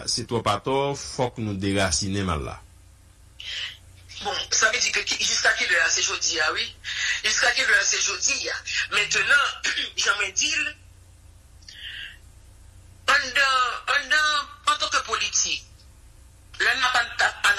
c'est toi pas tort, faut que nous déraciner mal là. Bon, ça veut dire que jusqu'à quelle heure c'est jeudi, ah oui? Jusqu'à quelle heure c'est jeudi? Maintenant, j'aimerais dire, en tant que politique, là, on n'a pas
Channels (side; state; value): both; identical; correlation 1.00